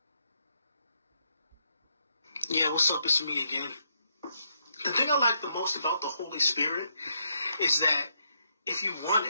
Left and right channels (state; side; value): inverted; both; correlation -0.77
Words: Yeah, what's up? It's me again. The thing I like the most about the Holy Spirit is that if you